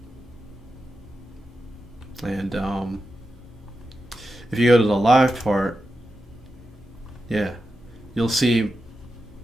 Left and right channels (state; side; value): normal; both; correlation 0.90